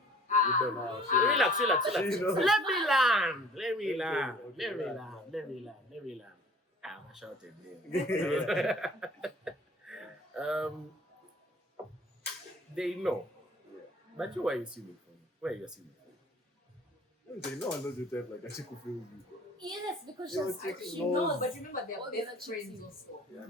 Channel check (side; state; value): both; normal; correlation 0.50